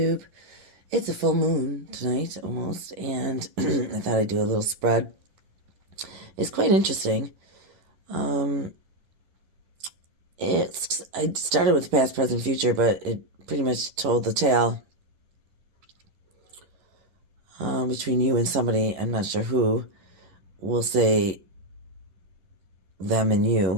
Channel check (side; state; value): left; late; 11 ms